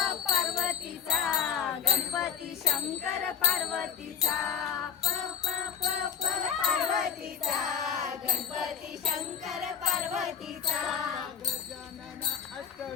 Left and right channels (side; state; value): right; quieter; 7.6 dB